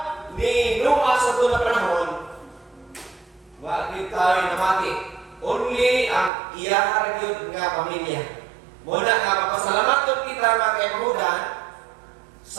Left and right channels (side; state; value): left; drops out; at 6.3 s